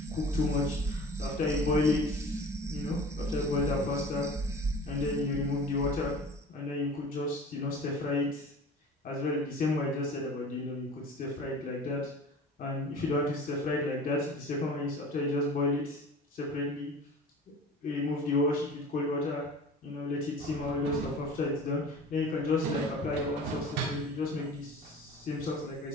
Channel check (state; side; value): normal; both; correlation 0.41